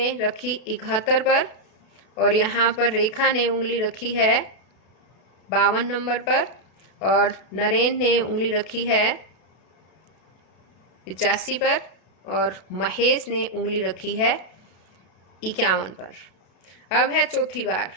रखी 71 पर और यहाँ पर रेखा ने उंगली रखी है 52 नंबर पर और नरेन ने उंगली रखी है 85 पर और महेश ने उंगली रखी है 51 पर। अब है चौथी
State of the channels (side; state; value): right; late; 32 ms